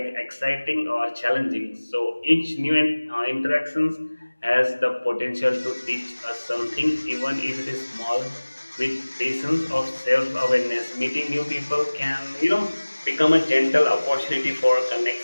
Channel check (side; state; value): both; inverted; correlation -1.00